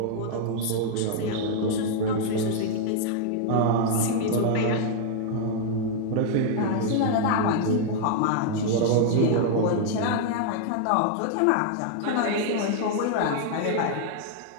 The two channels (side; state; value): both; different; correlation 0.00